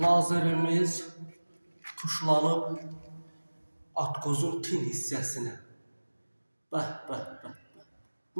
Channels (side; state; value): both; inverted; correlation -1.00